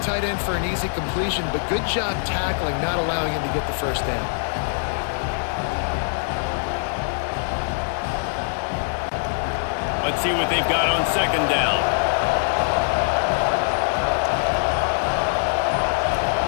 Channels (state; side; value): silent; right; digital silence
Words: end for an easy completion, but good job tackling, not allowing him to get the first down. Let's see what they've got on second down.